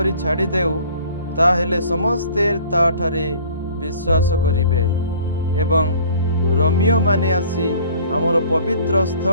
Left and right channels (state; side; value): inverted; both; correlation -0.51